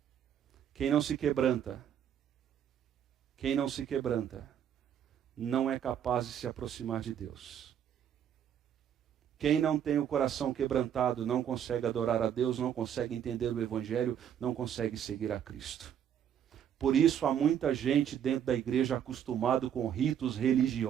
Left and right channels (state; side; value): quieter; left; 9.3 dB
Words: Quem não se quebranta, não é capaz de se aproximar de Deus. Quem não tem o coração quebrantado não consegue adorar a Deus, não consegue entender o Evangelho, não consegue seguir a Cristo. Por isso há muita gente dentro da igreja acostumado com ritos